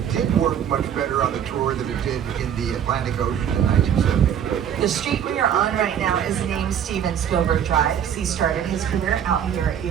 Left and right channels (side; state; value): left; quieter; 9.0 dB